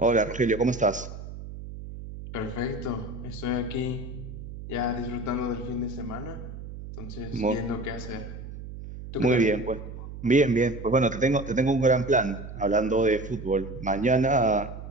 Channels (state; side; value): noise; right; hum, 11 dB below the sound